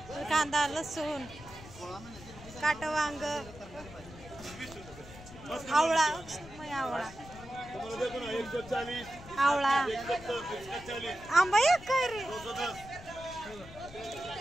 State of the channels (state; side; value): noise; left; rumble, 17 dB below the sound